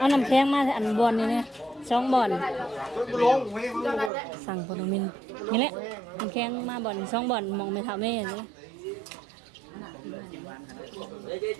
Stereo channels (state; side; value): drops out; left; at 4.1 s